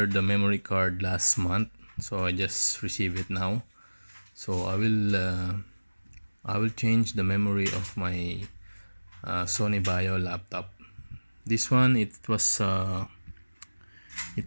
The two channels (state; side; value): inverted; both; correlation -1.00